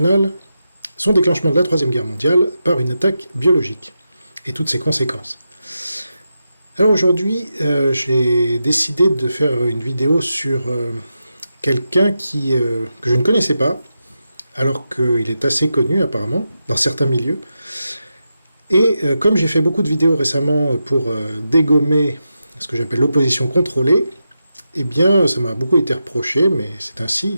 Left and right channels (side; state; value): both; inverted; correlation -0.88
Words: son déclenchement de la Troisième Guerre mondiale par une attaque biologique et toutes ses conséquences. Alors aujourd'hui, j'ai décidé de faire une vidéo sur quelqu'un que je ne connaissais pas, alors qu'il est assez connu apparemment, dans certains milieux. Et comme j'ai fait beaucoup de vidéos récemment pour dégommer ce que j'appelle l'opposition contrôlée, eh bien ça m'a beaucoup été reproché, mais c'est ainsi,